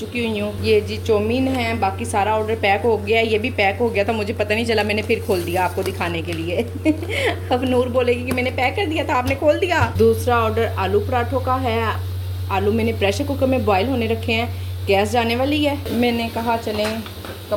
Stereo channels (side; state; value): both; identical; correlation 1.00